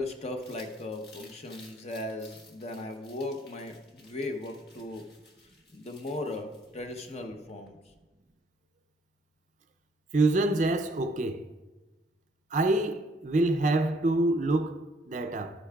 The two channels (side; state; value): both; normal; correlation 0.65